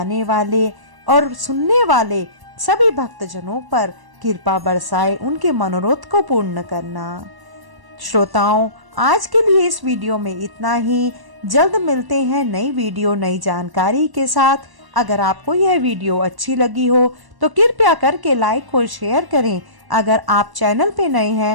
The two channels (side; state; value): left; late; 1.1 ms